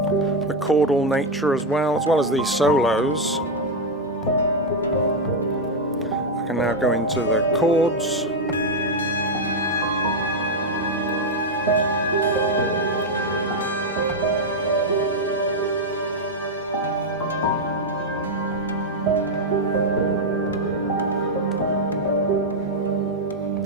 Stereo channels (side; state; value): both; normal; correlation 0.03